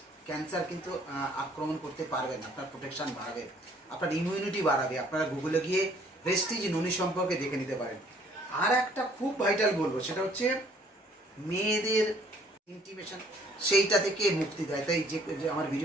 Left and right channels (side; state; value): both; normal; correlation 0.60